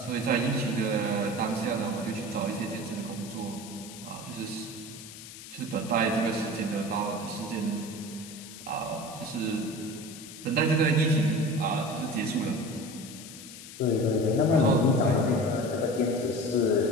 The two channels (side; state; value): left; noise; hiss, 14 dB below the sound